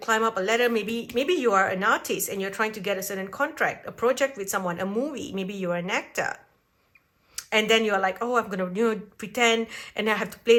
up a ladder. Maybe you are an artist and you're trying to get a certain contract, a project with someone, a movie. Maybe you're an actor. And then you're like, oh, I'm going to, you know, pretend and I have to play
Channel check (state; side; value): identical; both; correlation 1.00